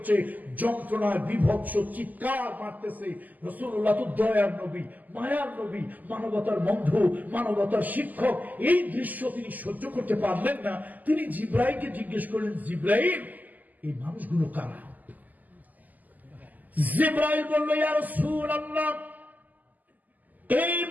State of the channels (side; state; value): left; late; 0.082 ms